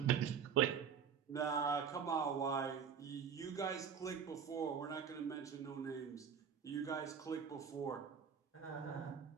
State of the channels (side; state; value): left; quieter; 7.1 dB